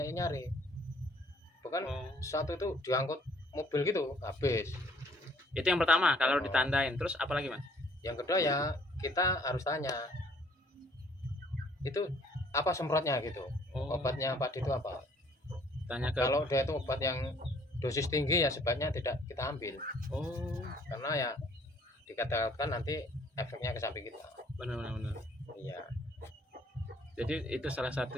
yang nyari. Bahkan Oh. satu itu diangkut mobil gitu habis. Itu yang pertama kalau Oh. ditandain. Terus apa lagi, Mas? Yang kedua ya kita harus tanya itu apa semprotnya gitu. Oh, Obatnya padi itu apa? tanya ke Kalau dia itu obat yang dosis tinggi ya sebaiknya tidak kita ambil Oh, karena ya dikatakan nanti efeknya ke sapi kita. benar benar benar. Iya. Jadi itu salah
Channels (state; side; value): normal; both; correlation 0.61